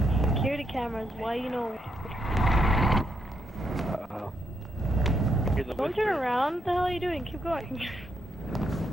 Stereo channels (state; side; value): normal; both; correlation 0.78